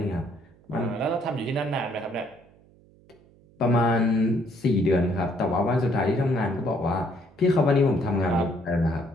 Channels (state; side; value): noise; right; hum, 28 dB below the sound